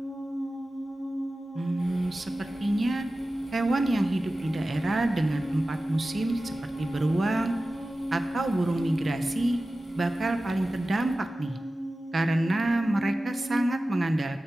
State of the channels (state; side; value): normal; both; correlation 0.95